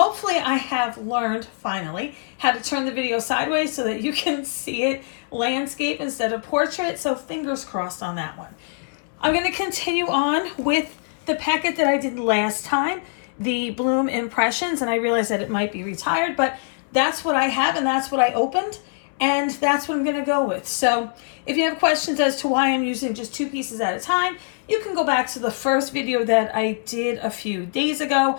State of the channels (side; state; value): right; silent; 63 dB below the other